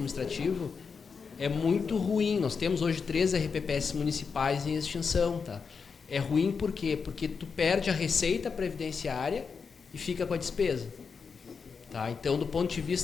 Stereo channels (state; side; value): quieter; right; 5.5 dB